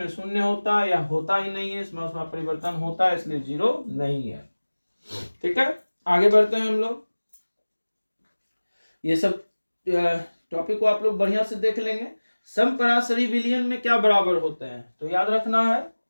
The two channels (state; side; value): inverted; both; correlation -1.00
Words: शून्य होता है या होता ही नहीं है, इसमें ऊष्मा परिवर्तन होता है इसलिए 0 नहीं है। ठीक है, आगे बढ़ते हैं हम लोग। ये सब टॉपिक को आप लोग बढ़िया से देख लेंगे। समपराशरी विलयन में क्या बराबर होते हैं, तो याद रखना है,